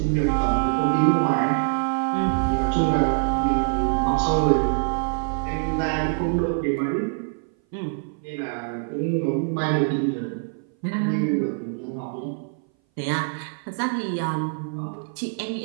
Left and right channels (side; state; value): left; silent; 59 dB below the other